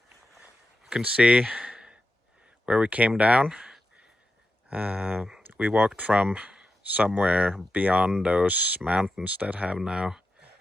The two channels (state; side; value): normal; both; correlation 0.89